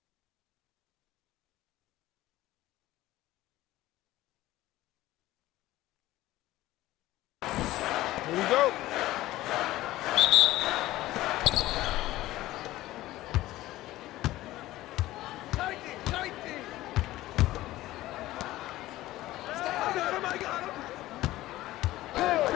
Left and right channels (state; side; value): quieter; right; 16.4 dB